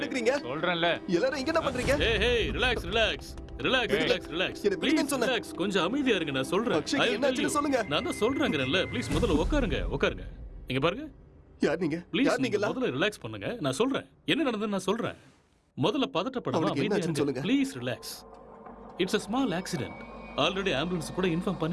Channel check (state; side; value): identical; both; correlation 1.00